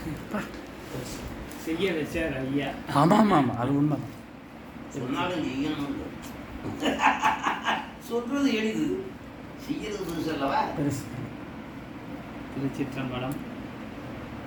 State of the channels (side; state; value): both; identical; correlation 1.00